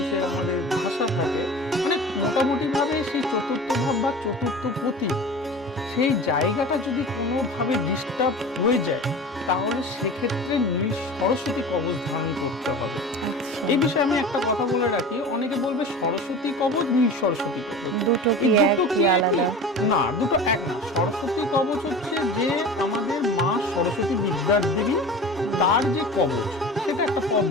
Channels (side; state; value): both; normal; correlation 0.35